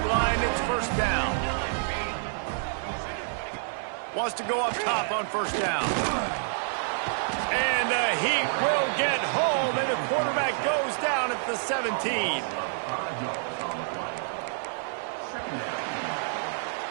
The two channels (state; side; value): silent; left; 59 dB below the other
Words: line. It's first down. Wants to go up top on first down. And the Heat will get home, and the quarterback goes down at the 17.